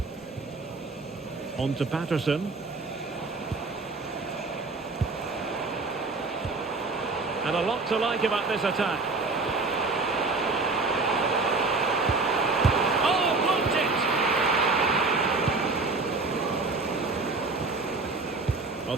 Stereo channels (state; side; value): quieter; left; 3.7 dB